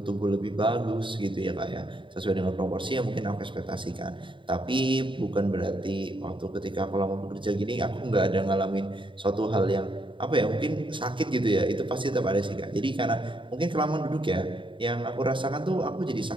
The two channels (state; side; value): late; left; 0.24 ms